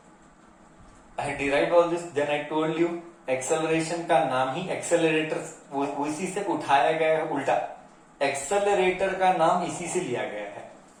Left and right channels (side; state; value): both; identical; correlation 1.00